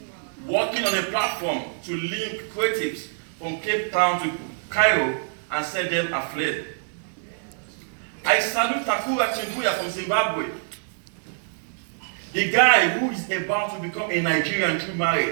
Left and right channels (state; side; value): silent; left; 62 dB below the other